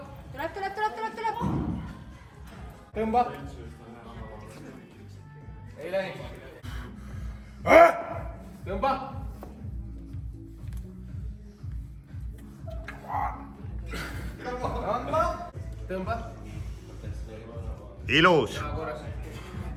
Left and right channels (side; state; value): both; identical; correlation 1.00